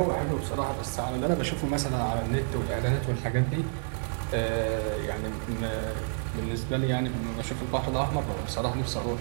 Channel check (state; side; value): silent; left; digital silence